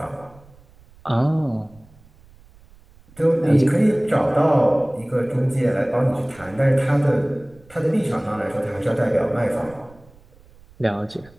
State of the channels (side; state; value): right; noise; rumble, 26 dB below the sound